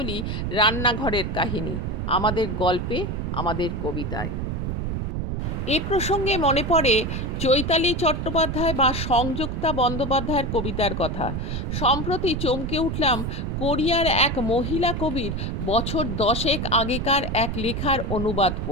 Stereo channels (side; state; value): right; noise; rumble, 3 dB below the sound